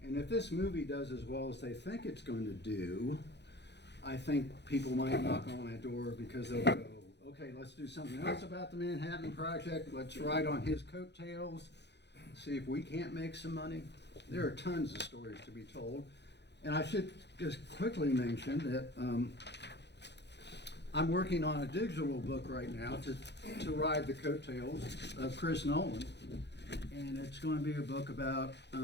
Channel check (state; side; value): late; right; 0.50 ms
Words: And if this movie does as well as they think it's going to do, I think people might knock on my door because they'll go, okay, let's do something else about the Manhattan Project. Let's ride on his coattails, see if we can't make some money. There are tons of stories to be told. And I should just quickly mention that I'm working on a digital book right now to ride the coattails of Chris Nolan. And it's going to be a book about,